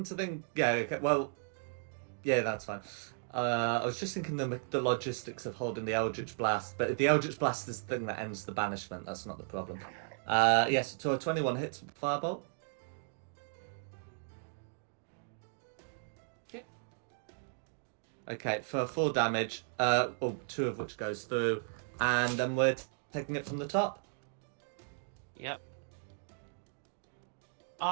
to think... Yeah, okay, well... Yeah, that's fine. I was just thinking the logistics of holding the Eldritch Blast, but if the Eldritch Blast is the thing that ends the banishment, that's not the problem. Yes, so a 21 hits with Firebolt. Okay, for 4 damage, well, 2 of which goes through, and then we're taking it from the top. Yep.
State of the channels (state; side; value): silent; left; digital silence